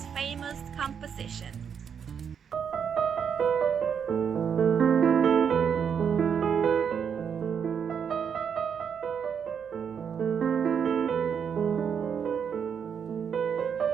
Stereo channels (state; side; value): quieter; left; 7.3 dB